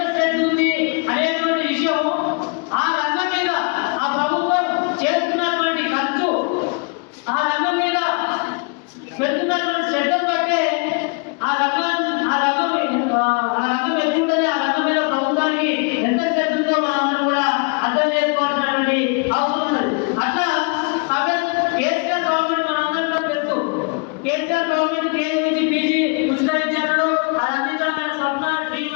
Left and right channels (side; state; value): right; quieter; 34.3 dB